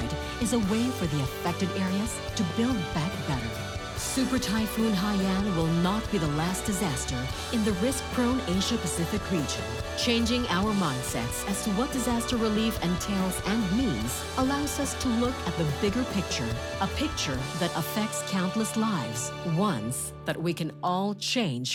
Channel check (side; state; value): both; identical; correlation 1.00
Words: is a way for the affected areas to build back better. Super Typhoon Haiyan will not be the last disaster in the risk-prone Asia-Pacific region. Changing our mindsets as to what disaster relief entails and means allows us to look at the bigger picture, a picture that affects countless lives, ones that we can all